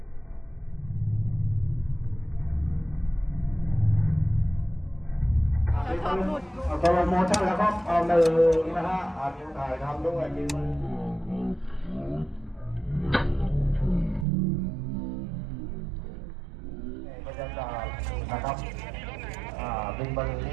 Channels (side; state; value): left; drops out; at 14.2 s